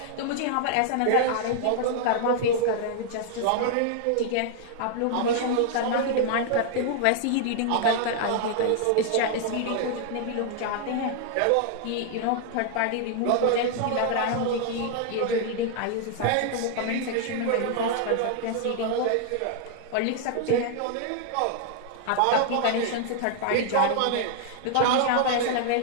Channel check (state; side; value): different; both; correlation 0.00